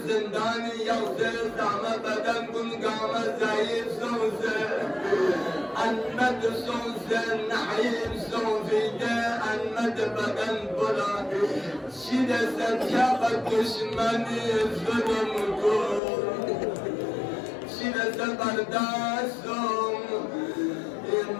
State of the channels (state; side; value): drops out; right; at 16.0 s